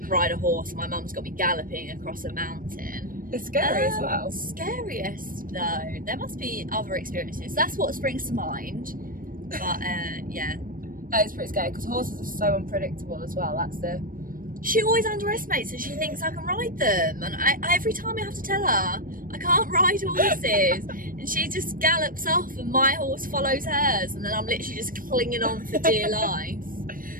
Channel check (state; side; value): late; left; 0.41 ms